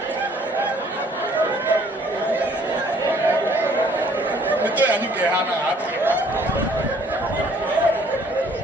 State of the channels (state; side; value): normal; both; correlation 0.60